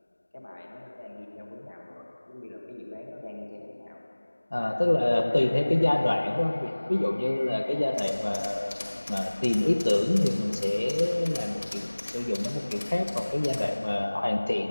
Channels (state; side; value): inverted; both; correlation -1.00